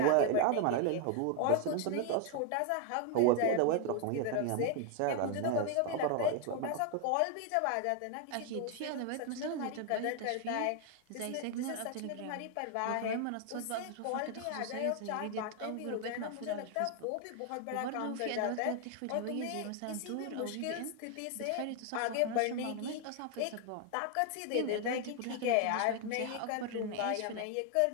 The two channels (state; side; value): different; both; correlation 0.01